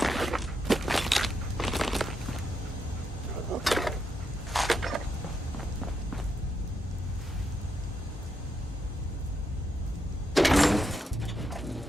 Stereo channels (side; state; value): both; normal; correlation 0.81